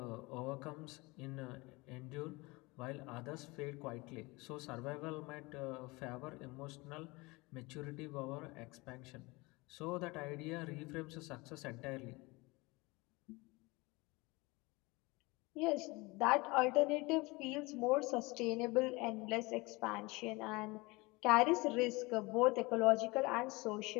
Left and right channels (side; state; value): right; quieter; 24.2 dB